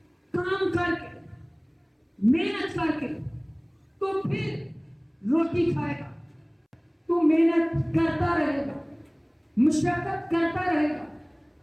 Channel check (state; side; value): identical; both; correlation 1.00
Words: کام کر کے، محنت کر کے، تو پھر روٹی کھائے گا۔ تو محنت کرتا رہے گا، مشقت کرتا رہے گا،